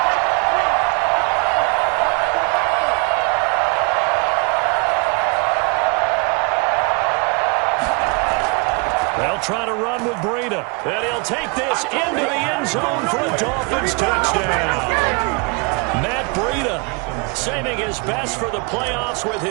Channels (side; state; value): left; quieter; 33.6 dB